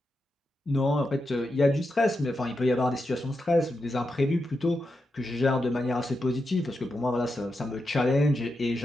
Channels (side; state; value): both; normal; correlation 0.87